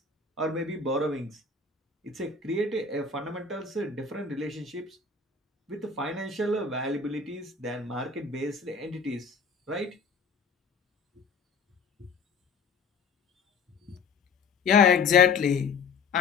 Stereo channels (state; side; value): quieter; right; 4.9 dB